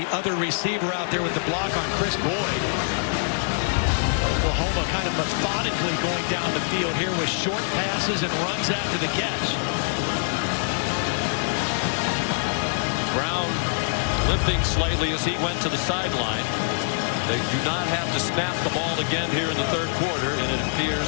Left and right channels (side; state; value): right; silent; digital silence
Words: other receiver out there with the block on Chris Boyd. Oklahoma kind of methodically going down the field here with short passes and runs after the catch. Brown limping slightly as he went to the sideline. They do not have to snap the ball again here in the third quarter, and it